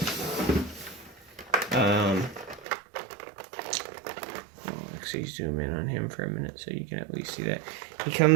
actually zoom in on him for a minute so you can at least see that. He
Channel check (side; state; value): left; drops out; at 2.7 s